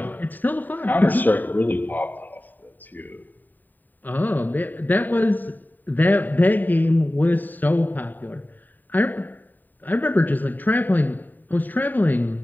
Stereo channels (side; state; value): right; late; 0.088 ms